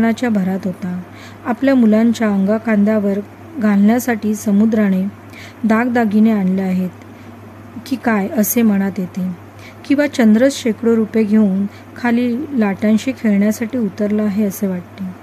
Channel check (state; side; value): identical; both; correlation 1.00